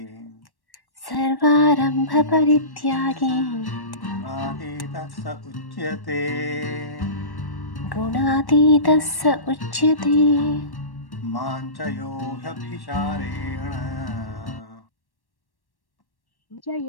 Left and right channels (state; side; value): late; right; 1.1 ms